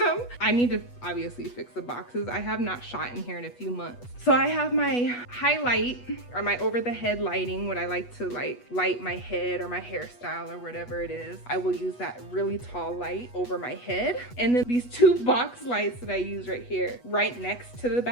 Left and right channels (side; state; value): right; late; 8.2 ms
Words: I need to obviously fix the boxes. I have not shot in here in a few months. So I have my highlight or my over the head lighting, what I like to like light my head or my hairstyle or whatever it is. I will use that really tall light over my head. And then these 2 box lights that I use right here, right next to the